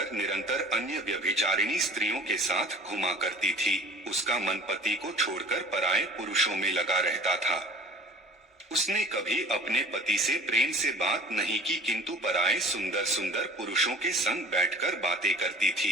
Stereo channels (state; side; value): normal; both; correlation 0.47